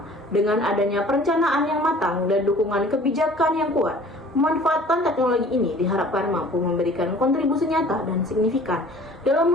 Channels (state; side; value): normal; both; correlation 0.49